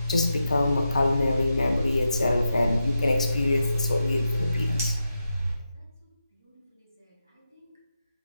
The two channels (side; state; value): both; inverted; correlation -0.88